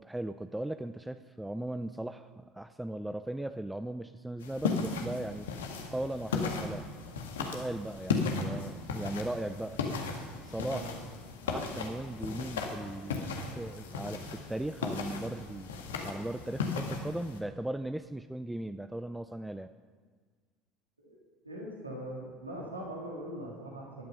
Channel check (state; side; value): normal; both; correlation 0.51